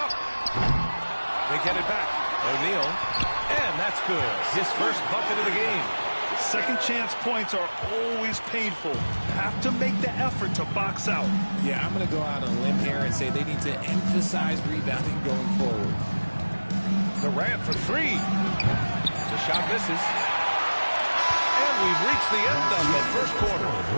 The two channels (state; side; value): inverted; both; correlation -1.00